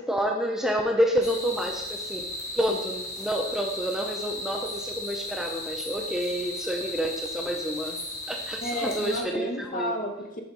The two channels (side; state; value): both; normal; correlation 0.52